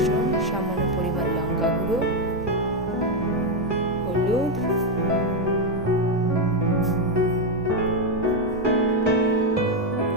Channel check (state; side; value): normal; both; correlation 0.04